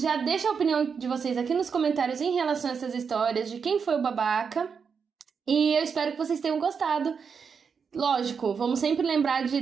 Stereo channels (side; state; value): left; quieter; 6.1 dB